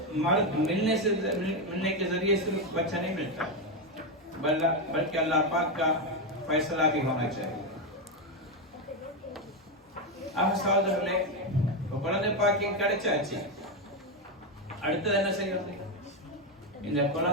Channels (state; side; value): normal; both; correlation 0.08